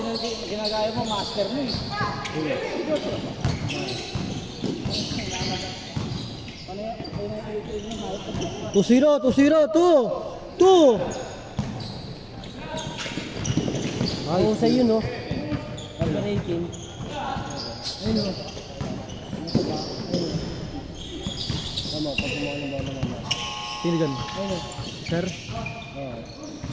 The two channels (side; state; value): both; identical; correlation 1.00